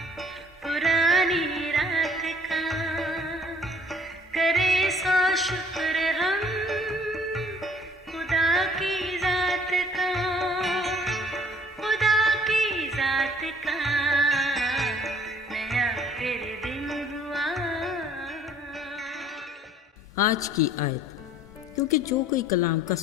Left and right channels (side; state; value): both; normal; correlation 0.56